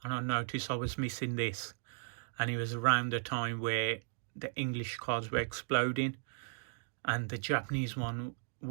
and I noticed I was missing this, and it was around the time where the English cards were exploding, and the Japanese one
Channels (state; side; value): silent; left; digital silence